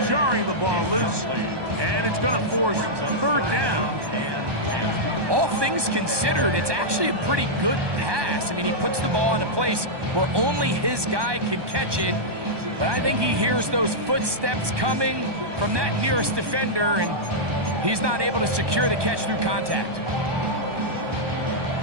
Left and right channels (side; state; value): left; late; 1.2 ms